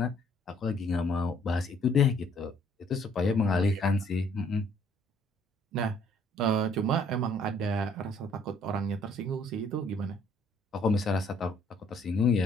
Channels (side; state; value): both; normal; correlation 0.62